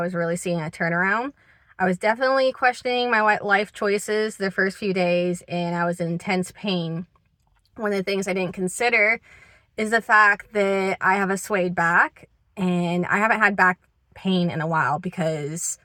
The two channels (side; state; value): both; identical; correlation 1.00